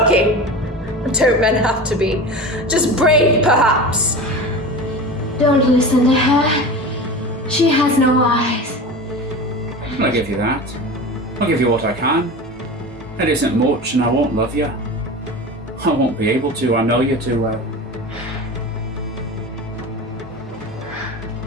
Don't men have to be? Just brave, perhaps. Don't listen to her. She has no eyes. I'll give you that. I'll give you what I can. It isn't much, and I won't love you. I won't be able to. I know you too well.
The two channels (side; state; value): both; normal; correlation 0.31